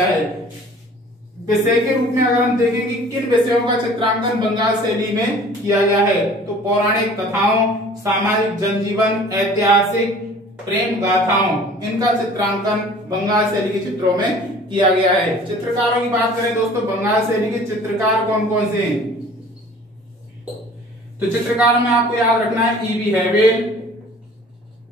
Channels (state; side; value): normal; both; correlation 0.48